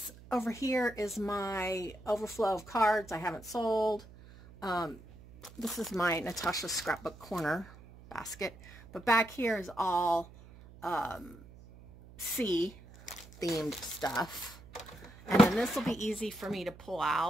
over here is my overflow of cards I haven't sold. This is my Natasha Scrapbook Corner basket. But back here is all sea themed stuff. And then this will be easy for me to pull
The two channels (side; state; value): right; noise; hum, 20 dB below the sound